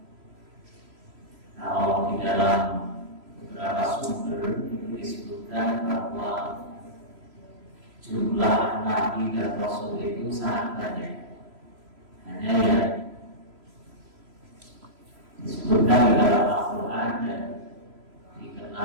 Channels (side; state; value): left; late; 3.0 ms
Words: Kalau di dalam beberapa sumber itu disebutkan bahwa jumlah nabi dan rasul itu sangat banyak. Hanya yang disebutkan di dalam Al-Quran dan